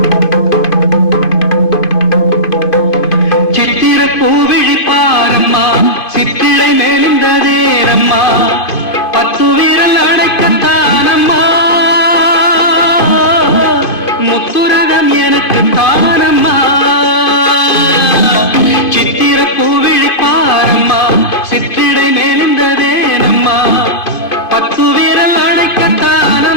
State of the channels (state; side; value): late; right; 2.5 ms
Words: சித்திர பூவிழி பாரம்மா, சித்திரை நெளிந்ததேரம்மா, 10 விரல் அடைக்கத்தானம்மா, முத்துரகம் எனக்கு தானம்மா. சித்திர பூவிழி பாரம்மா, சித்திரை நெளிந்ததேரம்மா, 10